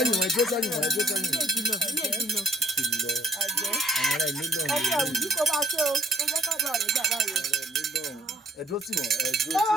wọ̀ ẹ dúró sẹ́yìn wọ̀ ẹ dúró sẹ́yìn wọ̀. àwọn ará ilé lọ́rùn. ẹni àwùjọ kó máa ṣe o ó jẹ́ ká bá rẹ̀ gbà báyìí. ẹ dúró tì wọ́n ẹ dúró tì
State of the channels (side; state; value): both; normal; correlation 0.64